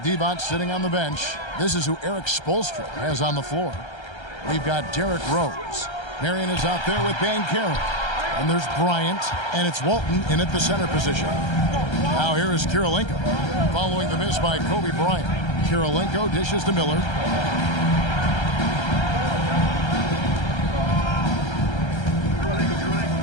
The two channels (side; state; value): right; late; 1.3 ms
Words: Devont sitting on the bench, this is who Eric Spoelstra has on the floor. We've got Derrick Rose. Marion is out there with Banchero. And there's Bryant, and it's Walton in at the center position. Now here is Kirilenko, following the miss by Kobe Bryant. Kirilenko dishes to Miller.